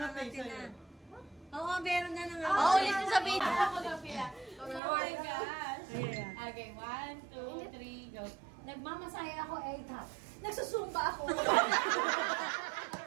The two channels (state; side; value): drops out; left; at 4.8 s